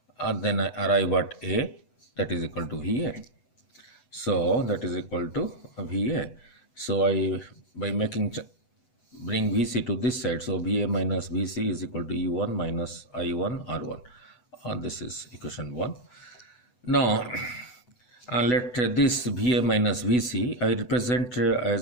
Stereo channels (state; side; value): late; right; 8.1 ms